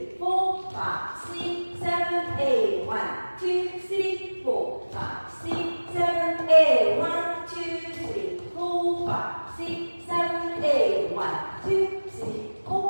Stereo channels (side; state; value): both; inverted; correlation -1.00